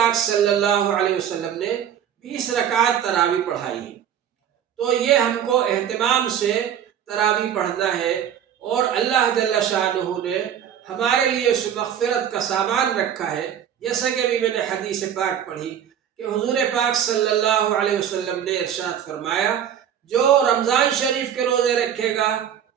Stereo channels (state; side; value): quieter; left; 9.3 dB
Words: صلی اللہ علیہ وسلم نے 20 رکعات تراویح پڑھائی ہے۔ تو یہ ہم کو اہتمام سے تراویح پڑھنا ہے، اور اللہ جل شانہ نے ہمارے لیے اس مغفرت کا سامان رکھا ہے، جیسا کہ ابھی میں نے حدیث پاک پڑھی کہ حضور پاک صلی اللہ علیہ وسلم نے ارشاد فرمایا، جو رمضان شریف کے روزے رکھے گا